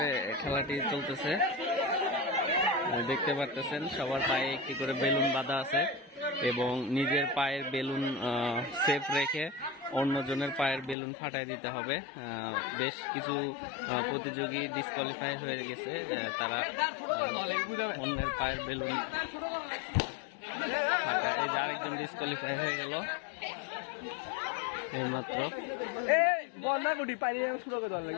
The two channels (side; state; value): right; drops out; at 11.0 s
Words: খেলাটি চলতেছে, দেখতে পারতেছেন সবার পায়ে একটি করে বেলুন বাঁধা আছে এবং নিজের পায়ের বেলুন সেফ রেখে অন্যজনের পায়ের বেলুন ফাটাই দিতে হবে। বেশ কিছু প্রতিযোগী ডিসকোয়ালিফাই হয়ে গেছে, তারা অন্যের পায়ের বেলুন ফাটায়। এই যে আরেকজন ডিসকোয়ালিফাই হয়ে গেল এইমাত্র।